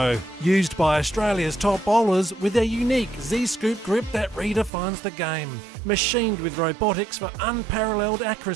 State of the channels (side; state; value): left; drops out; at 4.7 s